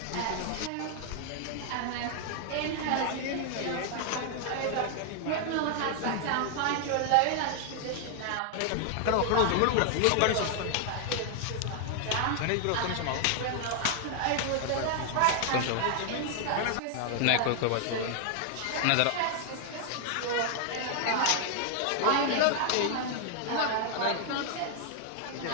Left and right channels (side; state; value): both; different; correlation 0.00